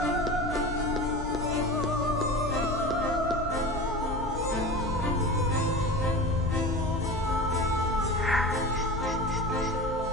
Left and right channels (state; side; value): normal; both; correlation 0.31